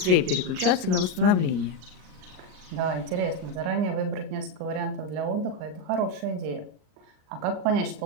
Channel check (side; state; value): left; late; 38 ms